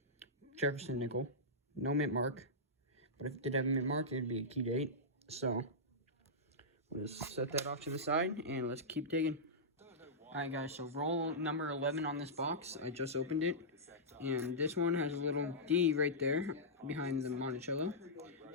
Jefferson nickel. No mint mark. But if it did have a mint mark, it would be a key date. So we'll just set that off to the side and let's keep digging. Alright guys, so roll number 11 on this box. I just opened it. And this one has a little D right there behind the Monticello.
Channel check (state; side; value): normal; both; correlation -0.12